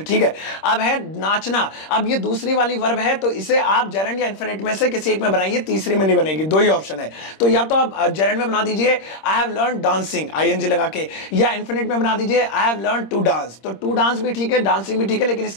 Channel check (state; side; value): late; right; 26 ms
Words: है। अब है नाचना, अब ये दूसरी वाली वर्ब है, तो इसे आप जेरेंड या इन्फिनिट में से किसी एक में बनाइए, तीसरी में नहीं बनेगी, दो ही ऑप्शन है। तो या तो आप जेरेंड में बना दीजिए I have learn dancing, ING लगा के, या इन्फिनिट में बना दीजिए I have learn to dance. तो टू डांस भी ठीक है, डांसिंग भी ठीक है, लेकिन